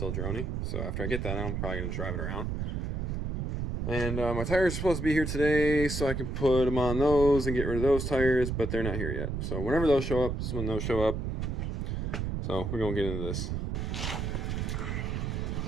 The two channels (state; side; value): noise; right; rumble, 2 dB below the sound